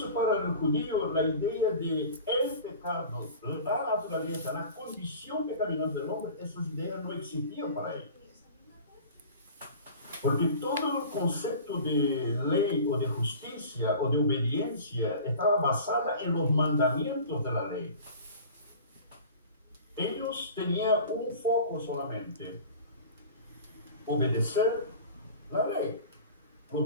para el judío, la idea de el pecado, la naturaleza, la condición pecaminosa del hombre, esas ideas no existían para ellos. Porque todo el concepto de ley o de justicia o de obediencia estaba basada en los mandamientos de la ley. Ellos tenían un foco solamente: obedecer la ley,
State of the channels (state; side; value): inverted; both; correlation -0.40